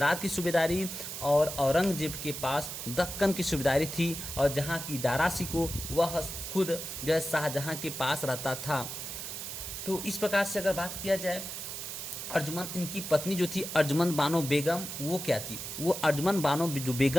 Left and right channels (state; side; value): noise; right; hiss, 7 dB below the sound